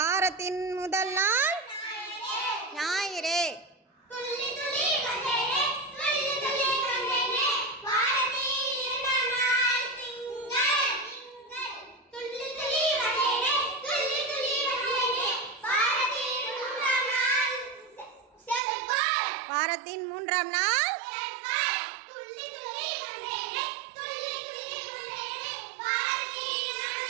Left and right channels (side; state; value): left; drops out; at 18.6 s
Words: முதல் நாள் ஞாயிறு. வாரத்தின் 3ஆம் நாள்